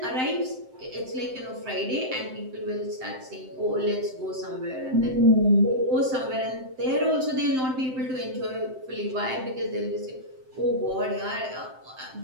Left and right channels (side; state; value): left; late; 7.7 ms